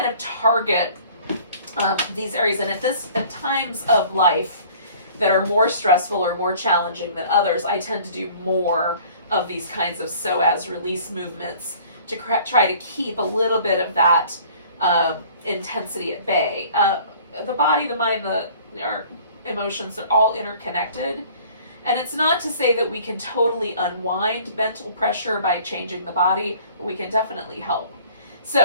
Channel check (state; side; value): inverted; both; correlation -0.51